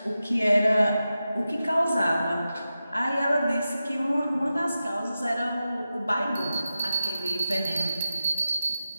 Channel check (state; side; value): inverted; both; correlation -0.92